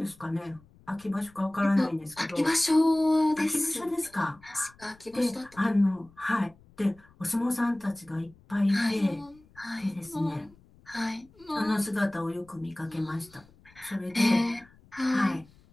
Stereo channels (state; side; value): noise; left; rumble, 27 dB below the sound